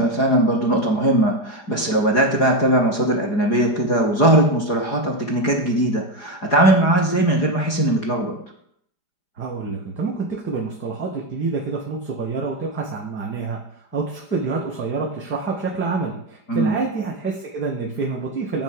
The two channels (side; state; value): right; late; 4.9 ms